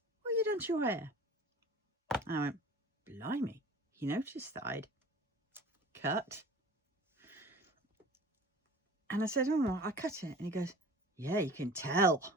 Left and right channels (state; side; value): normal; both; correlation 0.41